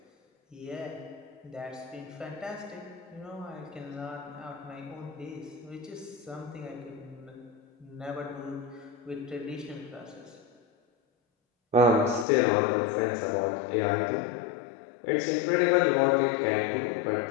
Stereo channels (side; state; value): right; drops out; at 12.2 s